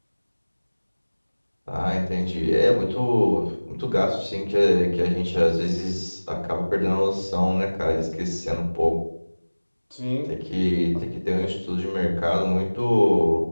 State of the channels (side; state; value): both; inverted; correlation -1.00